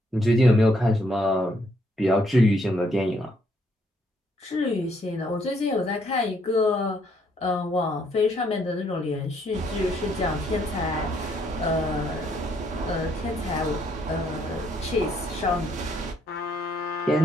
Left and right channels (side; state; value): both; normal; correlation 0.70